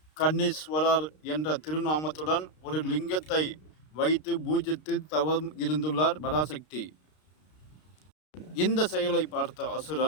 கண்ணீஸ்வரர் என்ற திருநாமத்துடன் ஒரு லிங்கத்தை வைத்து பூஜித்து தவம் இருந்துள்ளார் பராசக்தி. இந்த செயலை பார்த்த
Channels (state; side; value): late; right; 32 ms